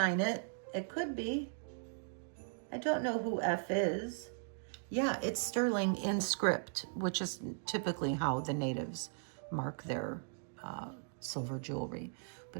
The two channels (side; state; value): left; silent; digital silence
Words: it. It could be. I don't know who F is. Yeah, it's sterling in script, which is typically how the natives mark their silver jewelry.